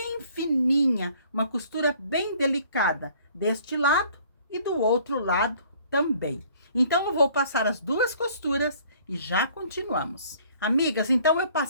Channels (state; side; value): inverted; both; correlation -0.56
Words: fininha, uma costura bem delicada. Deste lado e do outro lado também. Então, eu vou passar as duas costuras e já continuamos. Amigas, então eu